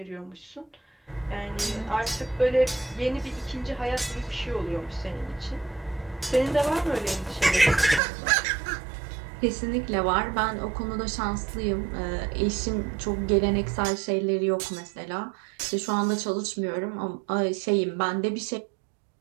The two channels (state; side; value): drops out; left; at 8.0 s